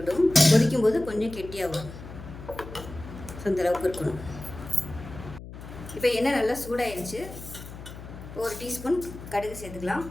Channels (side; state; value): left; noise; hum, 13 dB below the sound